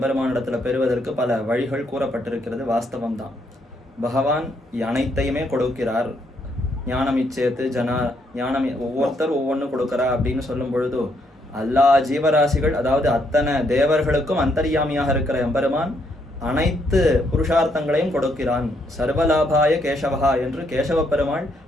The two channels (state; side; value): normal; both; correlation 0.74